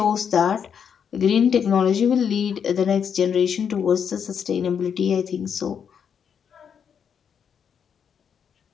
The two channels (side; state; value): right; quieter; 7.5 dB